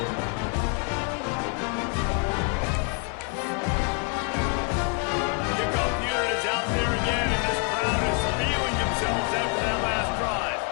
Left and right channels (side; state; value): right; quieter; 35.6 dB